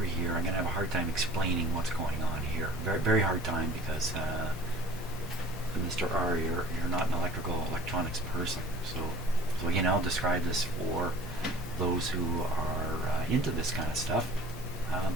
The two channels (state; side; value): normal; both; correlation 0.46